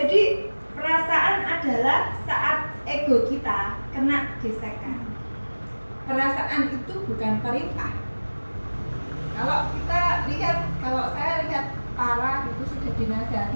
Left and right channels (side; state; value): both; inverted; correlation -1.00